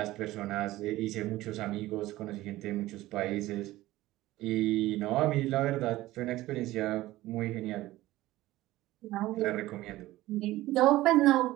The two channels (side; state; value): left; quieter; 16.8 dB